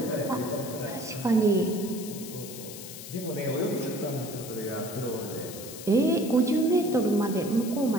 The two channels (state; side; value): noise; left; hiss, 12 dB below the sound